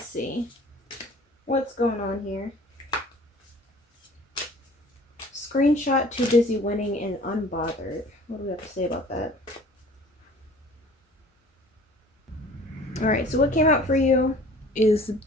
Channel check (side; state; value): both; normal; correlation 0.49